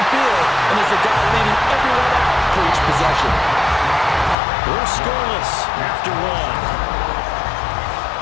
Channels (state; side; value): drops out; right; at 4.4 s